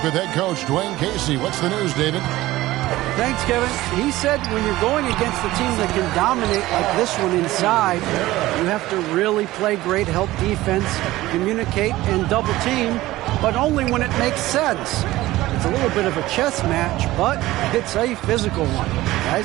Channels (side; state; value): left; quieter; 17.1 dB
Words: with head coach Dwayne Casey. What's the news, David? Thanks, Kevin. He said when you're going against a team that can dominate like this one inside, you have to really play great help defense, communicate, and double team, but only when it makes sense. It's a little bit of a chess match, but it's a physical one,